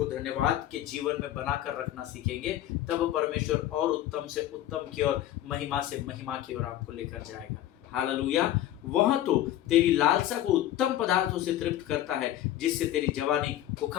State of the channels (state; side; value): quieter; right; 13.1 dB